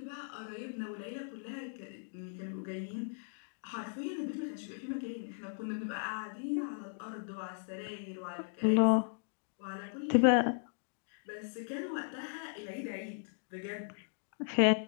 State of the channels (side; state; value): right; silent; digital silence